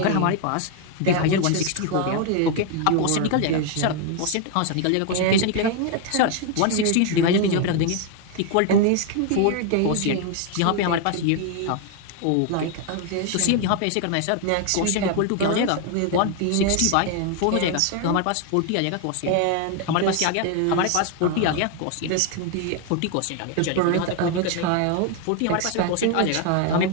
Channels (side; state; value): both; different; correlation 0.01